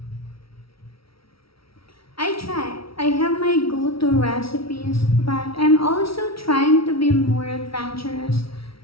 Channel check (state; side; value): late; right; 0.75 ms